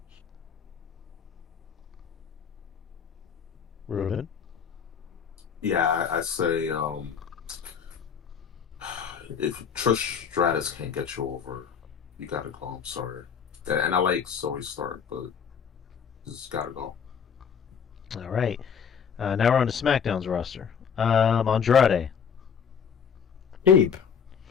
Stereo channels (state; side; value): quieter; right; 7.1 dB